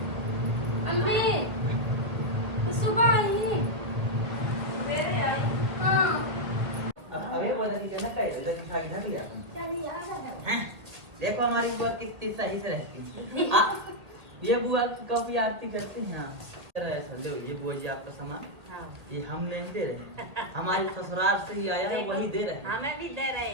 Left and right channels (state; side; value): late; left; 1.9 ms